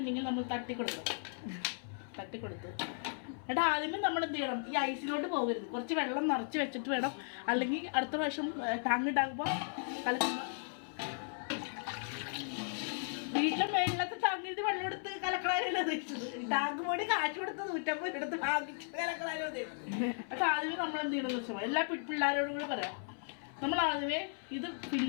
നമ്മൾ തട്ടിക്കൊടുക്കണം. തട്ടിക്കൊടുത്ത് എന്നിട്ട് ആദ്യമേ നമ്മൾ എന്ത് ചെയ്യണം, ഈ ഐസിലോട്ട് പോകരുത്. കുറച്ച് വെള്ളം നിറച്ച് വെച്ചിട്ട് വേണം. അല്ലെങ്കിൽ അടുത്ത പ്രാവശ്യം ടാങ്ക് ഉണ്ടാകുമ്പോൾ കലക്കുമ്പോൾ വീട്ടിലെ മേളിലത്തെ ടാങ്കിന് വെള്ളം എടുത്ത് കലക്കളാരല്ലോ ഉദ്ദേശിച്ചത്. ടാങ്ക് പോയി കാശ് കൊടുത്ത് 150 എടുത്ത് വാങ്ങിച്ച് കലക്കളാരോ ഉദ്ദേശിച്ചത്. പക്ഷെ ആദ്യമേ നമ്മൾ എന്ത് ചെയ്യണമെന്ന് വെച്ചാൽ എല്ലാ പിള്ളേരോടും കൂടി പറയാം. നമ്മൾ ആദ്യമേ ഇത്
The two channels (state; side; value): silent; right; 54 dB below the other